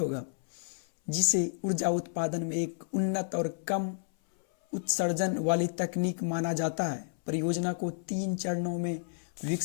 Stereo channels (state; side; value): silent; right; 57 dB below the other